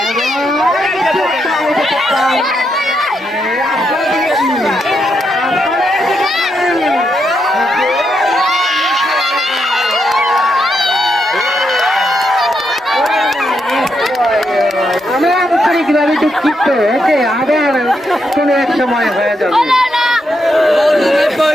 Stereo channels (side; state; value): both; normal; correlation 0.81